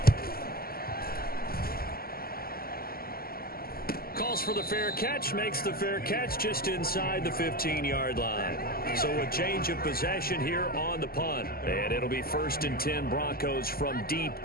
Calls for the fair catch, makes the fair catch just inside the 15-yard line. So a change of possession here on the punt. And it'll be 1st and 10 Broncos from deep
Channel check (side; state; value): right; late; 0.44 ms